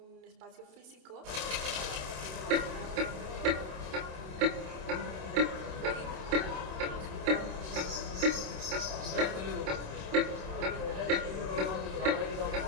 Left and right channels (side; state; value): left; late; 27 ms